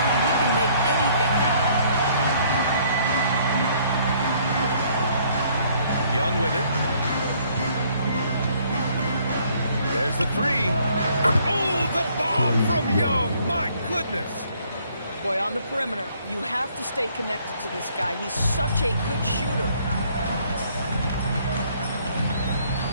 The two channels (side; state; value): both; inverted; correlation -0.63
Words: he can make anything happen. Young with it. There's the three. Oh, the bomb from Young. My goodness. Boy, on the perimeter, you have to stay connected to this guy. He's such a good shooter.